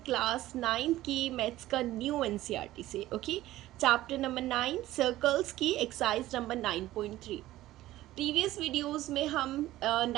क्लास 9 की मैथ्स का न्यू एनसीईआरटी से। ओके, चैप्टर नंबर 9 सर्कल्स की एक्सरसाइज नंबर 9.3। प्रीवियस वीडियोस में हम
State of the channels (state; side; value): quieter; left; 15.5 dB